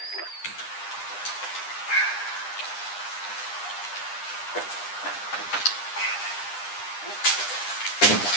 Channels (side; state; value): right; late; 9.9 ms